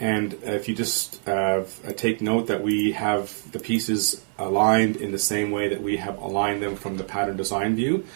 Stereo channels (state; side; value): silent; left; 61 dB below the other